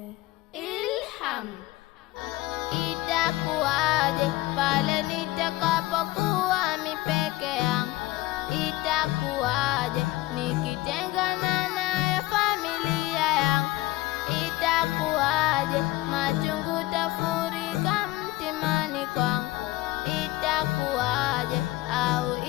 Ilham. Itakuwaje pale nitakapokuwa mipeke yangu? Itakuwaje nikitengana naye familia yangu? Itakuwaje machungu tafurika mtimani kwangu? Itakuwaje au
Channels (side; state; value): right; quieter; 18.8 dB